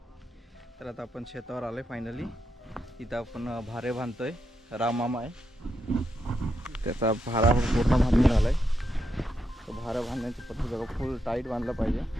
तर आता आपण शेतावर आलोय फायनली। इथं आपण भारे बांधतोय। राममामा आहे, त्याचा भारा पूर्ण बांधून झालाय। तो भारा बांधण्याची पद्धत बघा, फुल टाईट बांधला पाहिजे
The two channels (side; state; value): both; normal; correlation 0.83